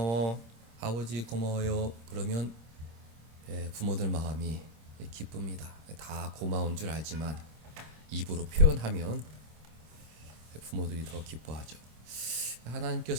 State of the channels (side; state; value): left; late; 26 ms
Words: 아버지 고마워요 그러면 부모들 마음이 기쁩니다. 다 고마운 줄 알지만 입으로 표현하면 부모들이 더 기뻐하죠.